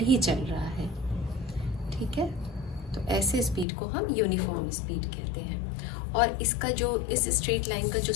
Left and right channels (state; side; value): drops out; right; at 3.7 s